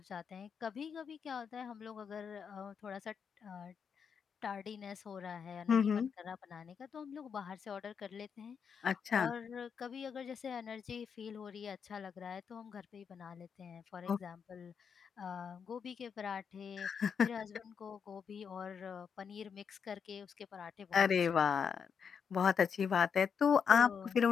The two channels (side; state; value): right; quieter; 6.7 dB